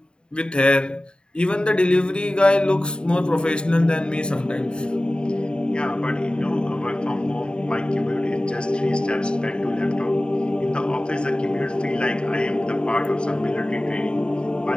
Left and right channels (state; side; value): late; right; 0.050 ms